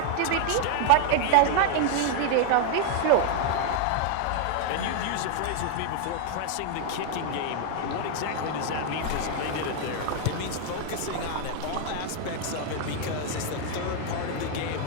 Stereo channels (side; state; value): both; different; correlation 0.00